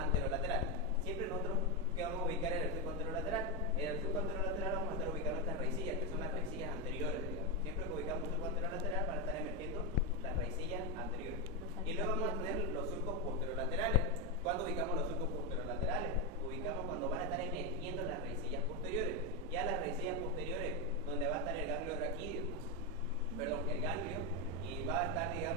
Siempre nosotros, ¿qué vamos a ubicar en el surco anterolateral? En el surco anterolateral vamos a estar ubicando estas raicillas, que son las raicillas anteriores, digamos. Siempre que ubicamos un surco anterolateral van a estar emergiendo las raicillas anteriores. Y luego vamos a tener los surcos posterolaterales. ¿Cuándo ubicamos los surcos posterolaterales? Ubicamos cuando van a estar emergiendo las raicillas posteriores. Ya las raicillas posteriores, donde va a estar el ganglio raquídeo, el ganglio, y va a estar,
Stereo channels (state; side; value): normal; both; correlation 0.06